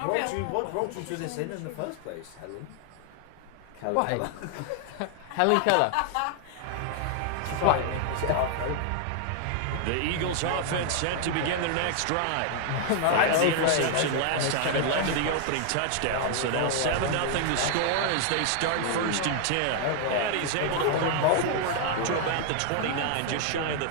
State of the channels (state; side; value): different; both; correlation 0.00